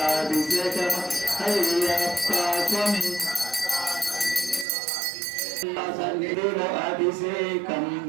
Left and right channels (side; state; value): left; drops out; at 4.7 s